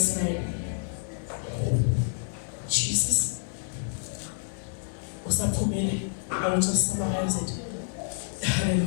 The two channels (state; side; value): silent; right; digital silence